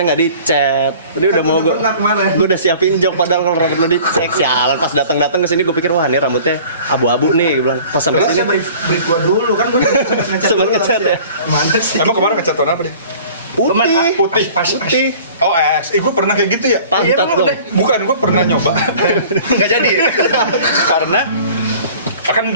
nggak dicet. Tadi udah mau gue udah siapin jok, padahal kalau rambut lo dicek, sialan pas datang ke sini gue pikir wah ini rambutnya abu-abu nih, gue bilang pas sampai sini. Brief gue dulu kan gue sempat ngecat ya. Mana sih? Emang kemarin ngecat warna apa deh? Putih. Oh gue pernah kayak gitu ya? Pantat dong. Bukan, gue pernah nyoba. Nggak jadi. Karena kan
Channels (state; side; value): inverted; both; correlation -0.47